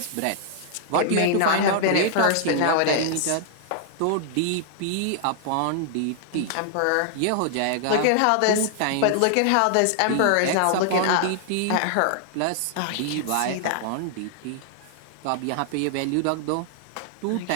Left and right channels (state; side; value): different; both; correlation -0.01